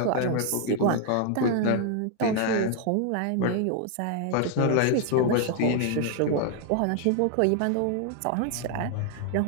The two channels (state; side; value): different; both; correlation 0.00